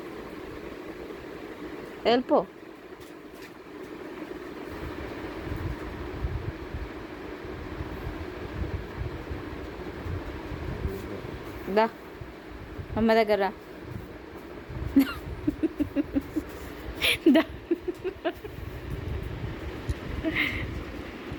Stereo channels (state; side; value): identical; both; correlation 1.00